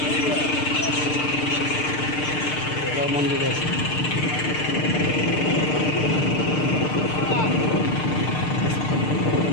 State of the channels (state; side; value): late; right; 6.6 ms